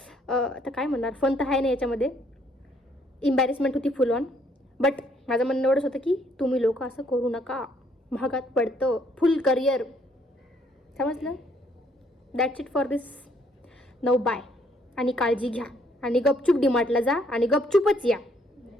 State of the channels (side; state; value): both; normal; correlation 0.67